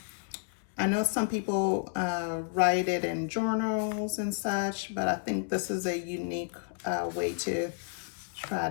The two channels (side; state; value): right; silent; digital silence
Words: know some people write it in journals and such, but I think this is a unique way to try